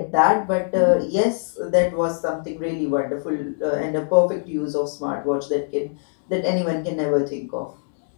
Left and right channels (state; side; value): silent; right; digital silence